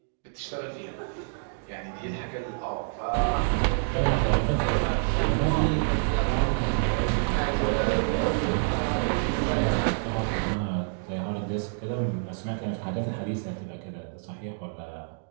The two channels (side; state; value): left; silent; digital silence